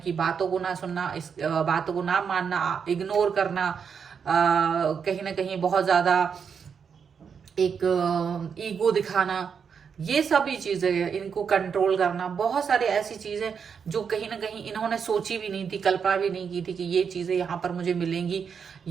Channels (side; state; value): left; quieter; 6.6 dB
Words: बातों को ना सुनना, इस बातों को ना मानना, इग्नोर करना, कहीं ना कहीं बहुत ज्यादा एक ईगो दिखाना, ये सभी चीजें, इनको कंट्रोल करना, बहुत सारी ऐसी चीजें जो कहीं ना कहीं इन्होंने सोची भी नहीं थी, कल्पना भी नहीं की थी कि ये चीजें यहाँ पर मुझे मिलेंगी।